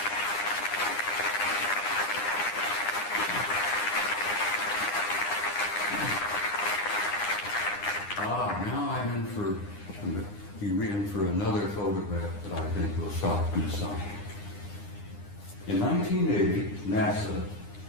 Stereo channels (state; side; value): late; right; 9.8 ms